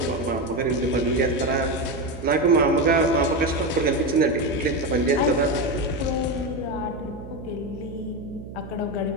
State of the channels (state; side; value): noise; right; hum, 13 dB below the sound